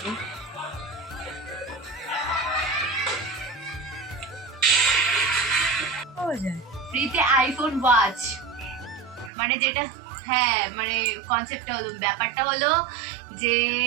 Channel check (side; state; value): left; drops out; at 9.3 s